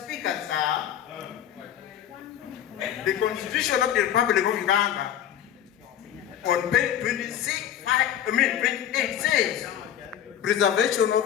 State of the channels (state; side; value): quieter; right; 10.3 dB